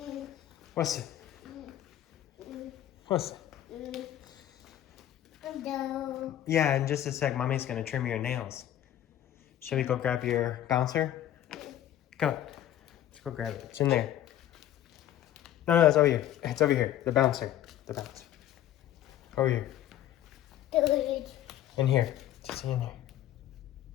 What's it? What's it? No. Yeah, in just a sec, mommy's gonna trim your nails. Shall we go grab your bouncer? Come on. Let's go grab it. It's in there. No, it's over here. It's over here. The bouncer. The bouncer. Over here. In here. Just in here.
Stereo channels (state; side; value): quieter; right; 12.2 dB